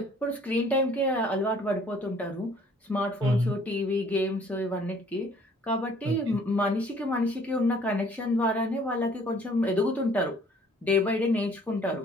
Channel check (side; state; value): both; normal; correlation 0.57